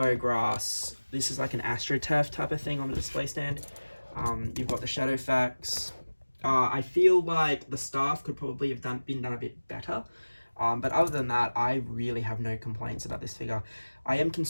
grass. This is like an AstroTurf type of thing on the display stand. You've got the shadow facts. I feel like the staff could probably have been done a bit better. But other than that, I really have no complaints about this figure. I am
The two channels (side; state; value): both; inverted; correlation -1.00